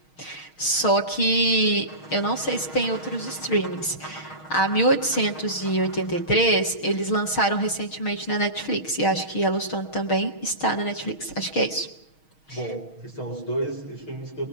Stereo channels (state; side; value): late; right; 6.4 ms